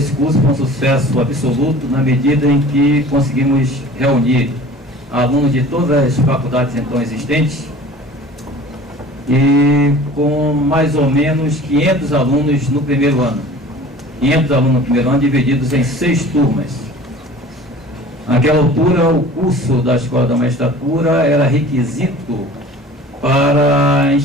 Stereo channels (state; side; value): normal; both; correlation 0.44